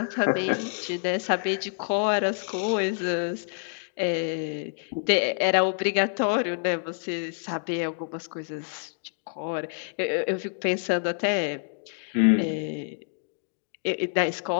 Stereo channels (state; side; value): silent; right; 60 dB below the other